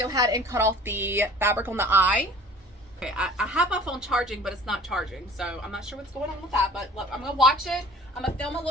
ahead and cut off the fabric on the eye. Okay, I have my phone charging, but it's not charging, so I'm not sure what's going on with that, but look, I'm gonna watch it. I'm gonna film a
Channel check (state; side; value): normal; both; correlation 0.47